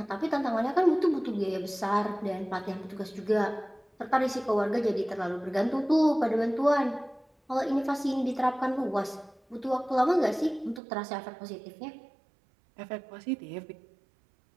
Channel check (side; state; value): left; drops out; at 10.8 s